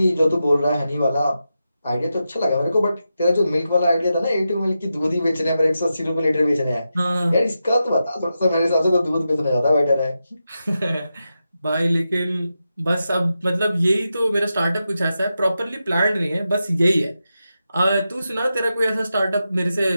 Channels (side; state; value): both; inverted; correlation -0.89